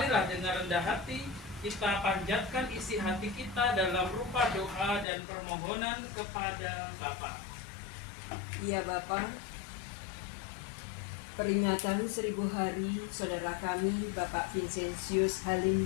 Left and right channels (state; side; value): drops out; right; at 5.1 s